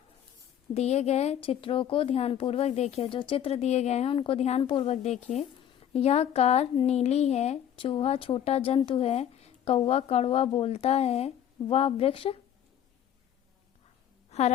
दिए गए चित्रों को ध्यानपूर्वक देखिए। जो चित्र दिए गए हैं उनको ध्यानपूर्वक देखिए। यह कार नीली है, चूहा छोटा जंतु है, कौवा कड़वा बोलता है, वह वृक्ष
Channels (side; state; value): right; quieter; 10.1 dB